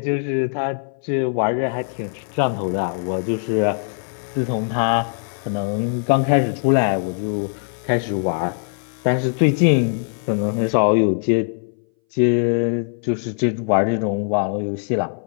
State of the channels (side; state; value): right; silent; 61 dB below the other